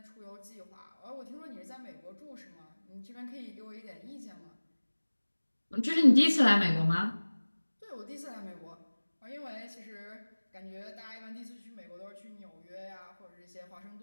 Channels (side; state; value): both; inverted; correlation -1.00